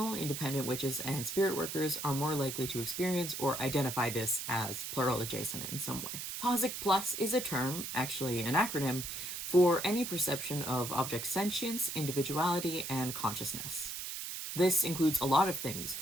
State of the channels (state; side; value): noise; right; hiss, 6 dB below the sound